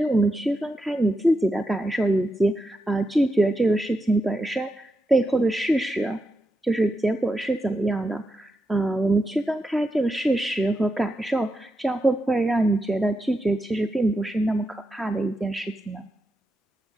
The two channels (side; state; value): both; normal; correlation 0.86